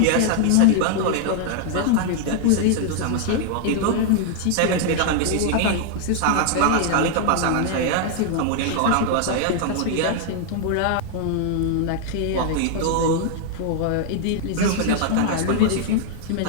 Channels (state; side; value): different; both; correlation 0.00